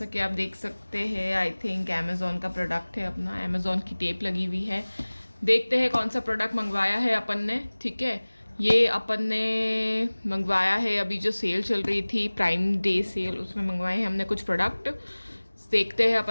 कि आप देख सकते हैं, आई थिंक अमेज़ॉन का प्रोडक्ट है। अपना अमेज़ॉन की टेप लगी हुई है। देखते हैं कौन सा प्रोडक्ट मंगवाया है अपन ने। ठीक है, ये अपन ने मंगवाया है अभी जो सेल चल रही थी, प्राइम डे सेल, उसमें मंगवाए हैं हमने कुछ प्रोडक्ट। देखते हैं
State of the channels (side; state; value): both; inverted; correlation -1.00